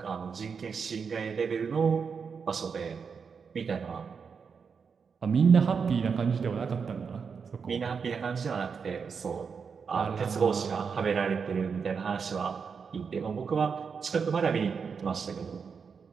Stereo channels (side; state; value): left; quieter; 5.9 dB